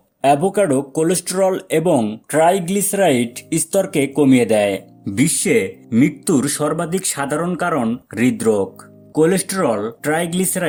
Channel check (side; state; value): both; identical; correlation 1.00